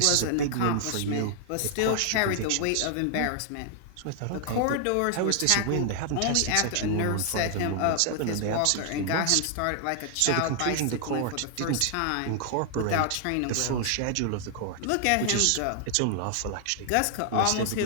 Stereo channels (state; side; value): different; both; correlation 0.00